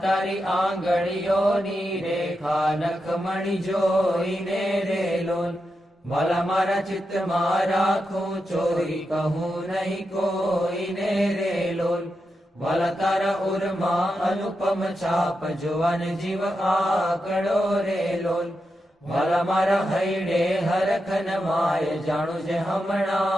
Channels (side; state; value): both; normal; correlation 0.87